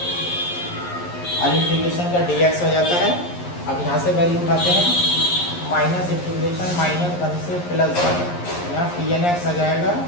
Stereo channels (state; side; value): late; right; 11 ms